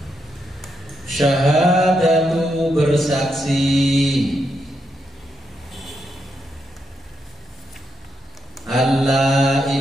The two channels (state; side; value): normal; both; correlation 0.82